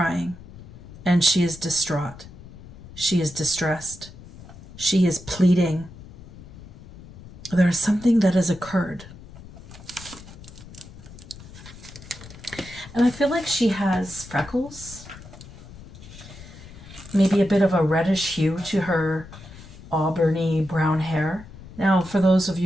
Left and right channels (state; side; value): noise; left; rumble, 17 dB below the sound